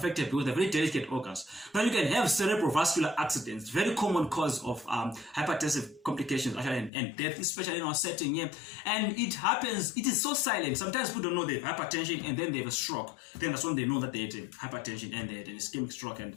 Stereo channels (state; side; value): drops out; right; at 6.9 s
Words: because they're very delicate organs. Now you can have cerebrovascular accidents, very common cause of hypertensive complications actually, and death, especially in our setting here. And it happens, it is so silent. Sometimes people don't know they have hypertension and then they have a stroke. Then that's when they know that they had hypertension and they had an ischemic stroke and